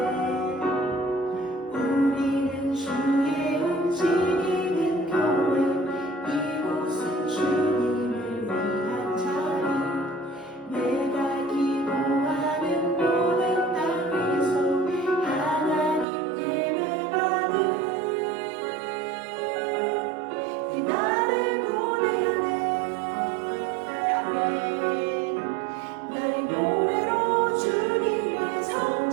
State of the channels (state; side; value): drops out; left; at 16.1 s